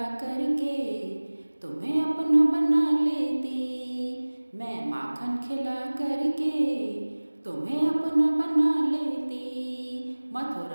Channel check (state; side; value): inverted; both; correlation -1.00